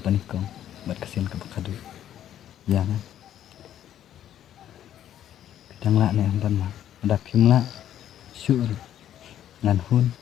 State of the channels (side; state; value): right; quieter; 11.0 dB